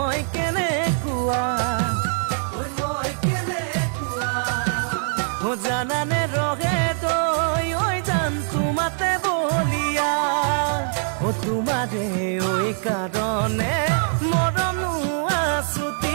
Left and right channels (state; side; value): silent; left; 63 dB below the other